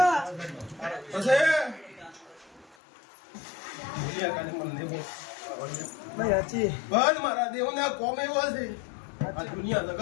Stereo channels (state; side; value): drops out; right; at 2.8 s